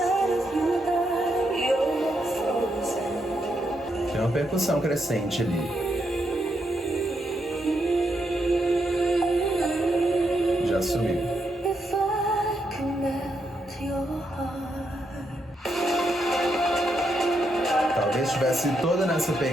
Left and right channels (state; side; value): normal; both; correlation 0.80